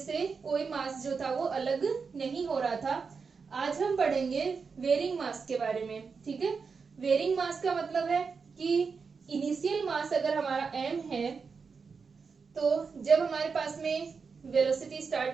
कोई मास जो था वो अलग नहीं हो रहा था। आज हम पढ़ेंगे वेरिंग मास के बारे में। ठीक है, वेरिंग मास का मतलब है कि इनिशियल मास अगर हमारा m है तो जब हमारे पास में वेलोसिटी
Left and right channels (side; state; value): left; quieter; 5.3 dB